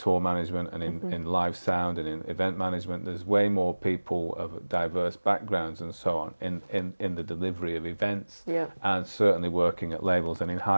management and in live sound and in event management. There's way more people of diverse backgrounds and so on in the delivery of events, and certainly working at labels and in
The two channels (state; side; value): inverted; both; correlation -1.00